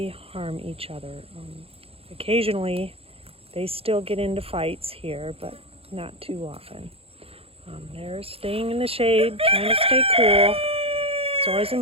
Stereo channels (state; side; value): late; left; 0.28 ms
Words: harm each other. Occasionally they still get into fights here, but not too often. They're staying in the shade, trying to stay cool. It's always